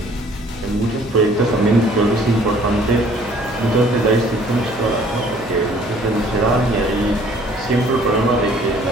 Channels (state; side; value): noise; right; hum, 23 dB below the sound